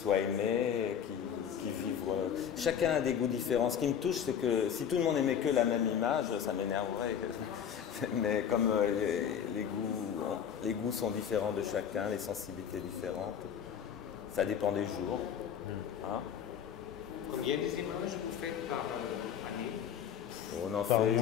aimés, qu'ils vivent... Chacun a des goûts différents. Ce qui me touche, c'est que si tout le monde aimait que la même image, ça m'énerverait. Mais comme les goûts sont différents de chacun, les sensibilités différentes, ça dépend des jours. Hein? Combien des images vous faites par année? On en par fait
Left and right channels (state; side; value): quieter; right; 8.5 dB